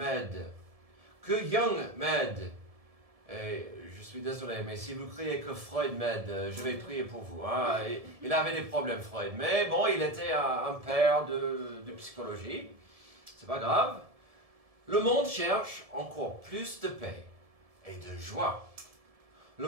que Jung m'aide. Et je suis désolé, mais si vous criez que Freud m'aide, je vais prier pour vous. Hein. Il avait des problèmes, Freud. Mais bon, il était un père de psychologie. C'est pas grave. Le monde cherche encore plus de paix et de joie.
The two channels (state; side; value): late; left; 1.7 ms